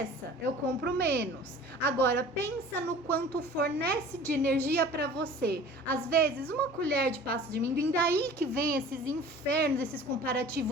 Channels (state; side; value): normal; both; correlation 0.44